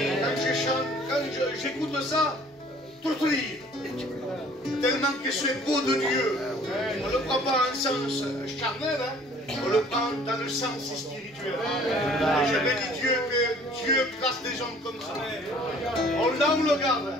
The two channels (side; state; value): both; normal; correlation 0.54